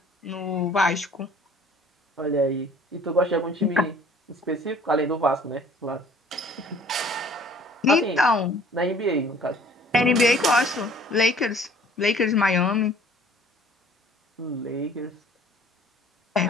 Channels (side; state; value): both; normal; correlation 0.53